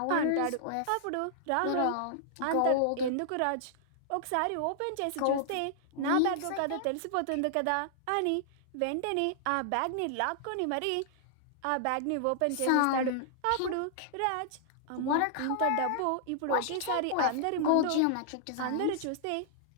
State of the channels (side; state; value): both; different; correlation -0.01